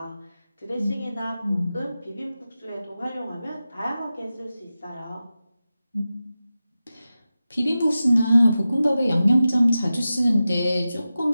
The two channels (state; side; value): inverted; both; correlation -0.93